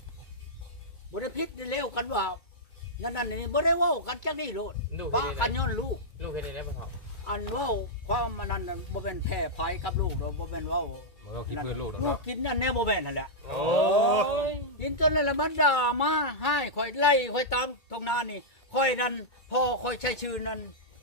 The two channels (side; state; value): right; late; 2.3 ms